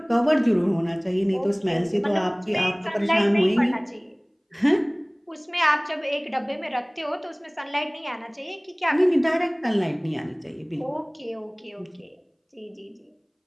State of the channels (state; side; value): identical; both; correlation 1.00